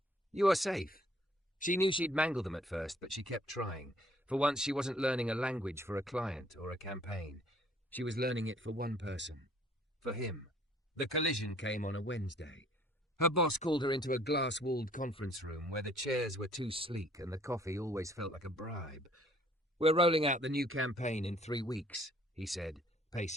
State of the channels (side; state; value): both; normal; correlation 0.59